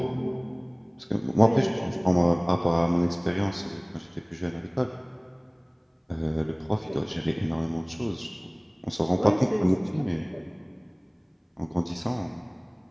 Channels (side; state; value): both; identical; correlation 1.00